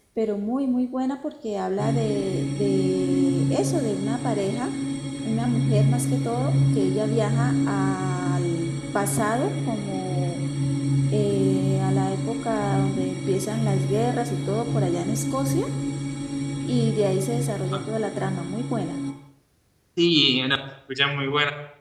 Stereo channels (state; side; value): identical; both; correlation 1.00